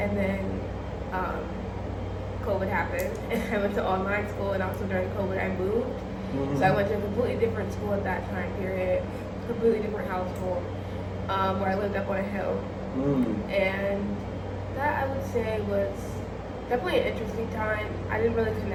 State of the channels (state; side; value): identical; both; correlation 1.00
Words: then COVID happened, and I went to online school, and also during COVID, I moved. So I went to a completely different school at that time period, completely different household, where I lived up on a hill. And that, I would say, was definitely an interesting time. I didn't really